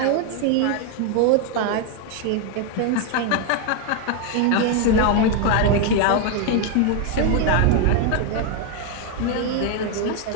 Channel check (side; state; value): both; different; correlation 0.01